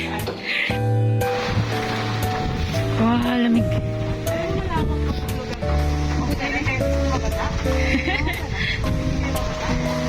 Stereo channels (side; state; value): both; identical; correlation 1.00